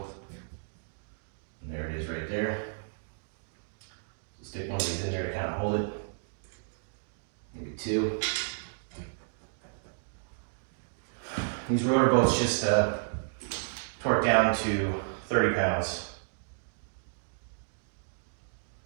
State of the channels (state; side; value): silent; left; digital silence